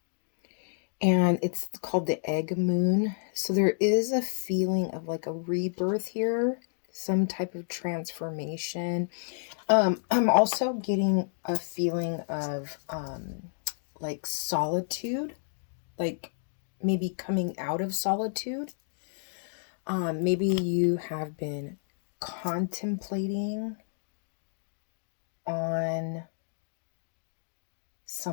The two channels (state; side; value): silent; right; digital silence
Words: And it's called the egg moon. So there is a feeling of like a rebirth here, some type of transformation. I'm also getting a feeling of like solitude, like maybe coming out of solitude. Maybe you have been contemplating on